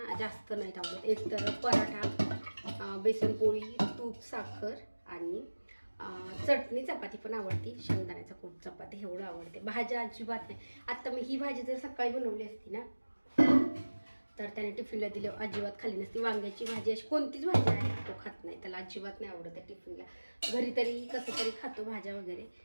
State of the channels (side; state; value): both; inverted; correlation -1.00